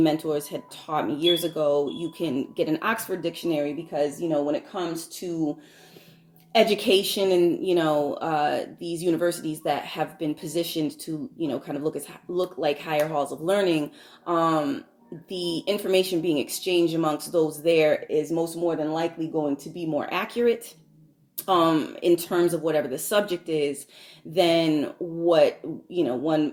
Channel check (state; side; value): identical; both; correlation 1.00